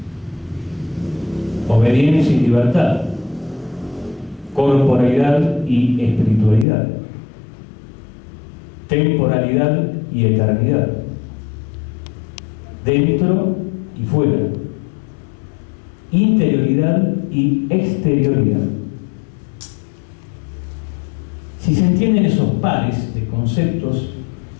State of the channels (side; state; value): right; drops out; at 6.7 s